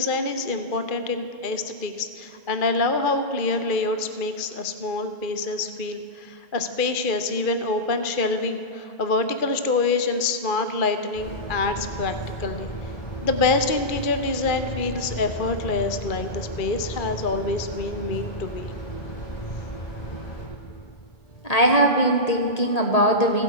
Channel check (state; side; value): late; right; 2.3 ms